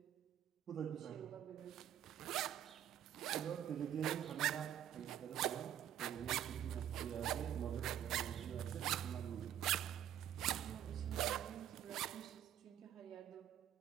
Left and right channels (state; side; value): quieter; left; 10.6 dB